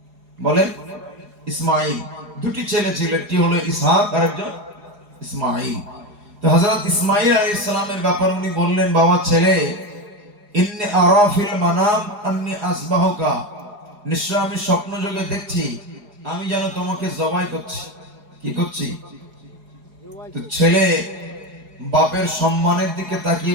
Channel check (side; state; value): left; late; 4.8 ms